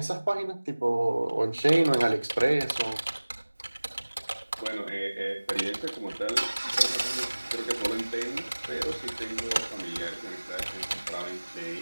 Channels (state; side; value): inverted; both; correlation -1.00